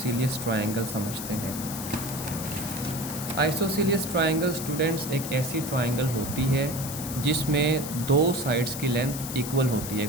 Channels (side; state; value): left; noise; hiss, 8 dB below the sound